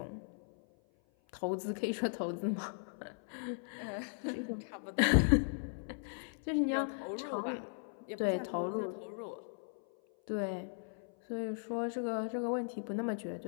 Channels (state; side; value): silent; right; 53 dB below the other